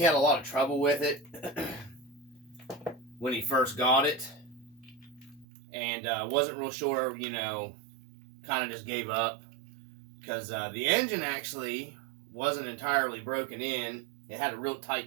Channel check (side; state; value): left; drops out; at 5.5 s